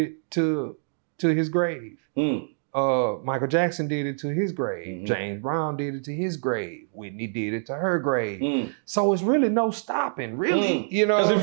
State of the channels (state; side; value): silent; left; digital silence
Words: to his grave. Michael Jackson did it to his grave. James Brown did it to his grave. Whitney did it to her grave. So it's really no stopping, really. You know what